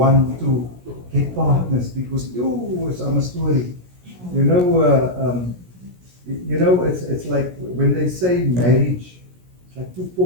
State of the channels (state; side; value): late; left; 17 ms